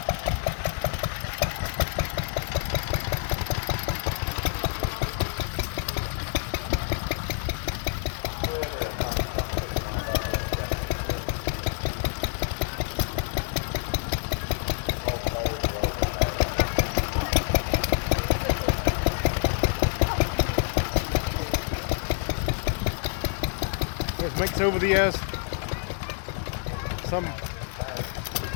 There's mix over the years. Some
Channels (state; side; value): silent; right; 60 dB below the other